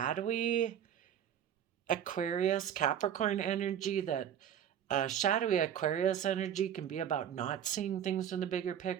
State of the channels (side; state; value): left; quieter; 9.6 dB